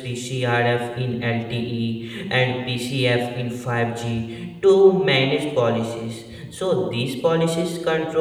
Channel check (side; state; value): both; identical; correlation 1.00